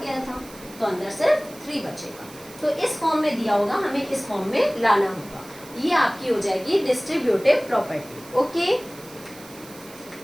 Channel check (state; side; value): noise; right; hiss, 19 dB below the sound